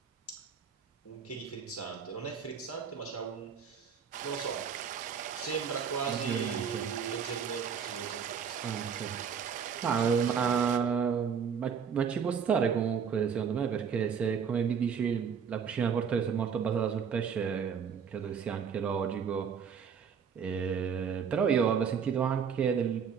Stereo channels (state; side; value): quieter; left; 6.9 dB